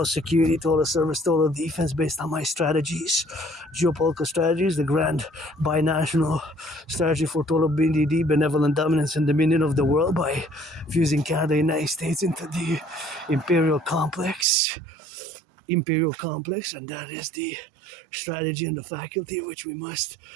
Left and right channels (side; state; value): left; drops out; at 14.5 s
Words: security, total service, total defense based on my strategies, geopolitical strategies, the grand binational strategy for total BDD, benevolent dominance and dominion of the world, by fusing Canada and the United States into the imperial complex, and that is the strategy and the faculty which we must